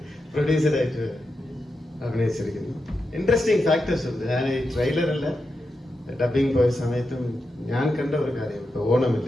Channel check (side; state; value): both; normal; correlation 0.88